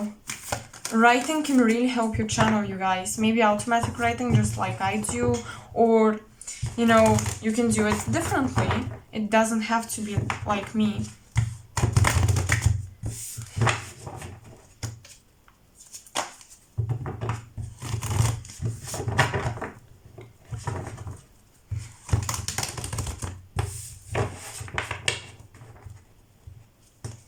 Writing can really help you channel, you guys. Maybe automatic writing just like I do, or you know, you can do it differently. It doesn't have to be like me.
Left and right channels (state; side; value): identical; both; correlation 1.00